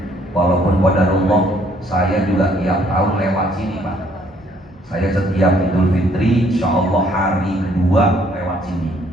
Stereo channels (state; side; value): normal; both; correlation 0.64